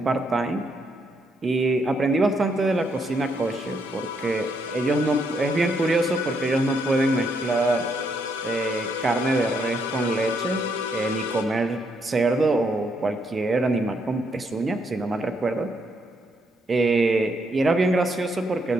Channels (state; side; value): normal; both; correlation 0.75